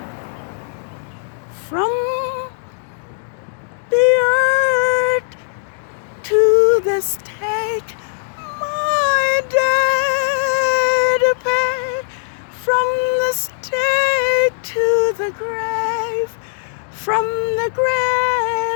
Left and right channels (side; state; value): right; silent; digital silence